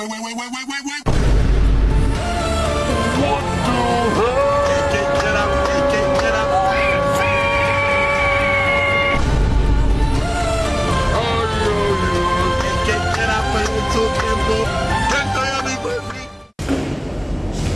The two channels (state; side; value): identical; both; correlation 1.00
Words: wait, wait, wait, wait. Get up, get up. Get up, YouTube tempo. Tanto ya mi perfil.